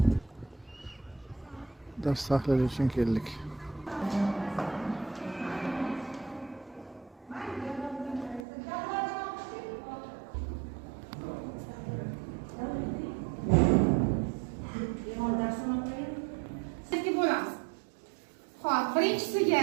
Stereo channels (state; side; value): drops out; left; at 8.5 s